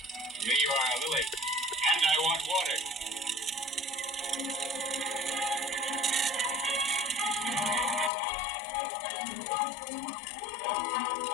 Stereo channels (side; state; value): right; drops out; at 8.1 s